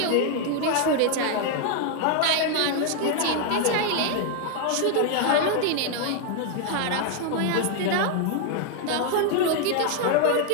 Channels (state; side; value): different; both; correlation 0.00